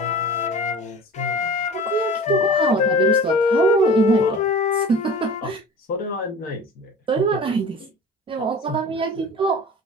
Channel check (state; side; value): normal; both; correlation 0.39